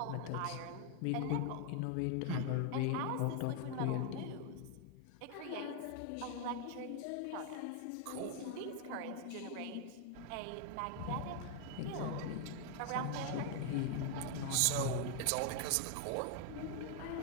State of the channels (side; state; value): both; different; correlation 0.00